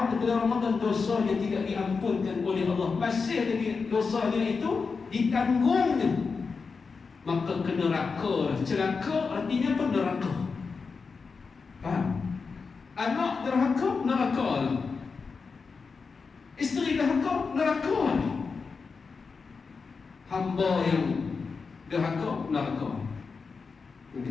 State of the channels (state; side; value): quieter; right; 4.9 dB